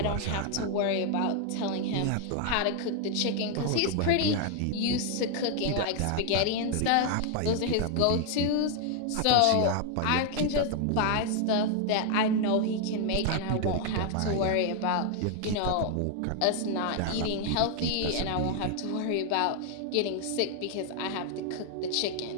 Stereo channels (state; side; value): different; both; correlation 0.00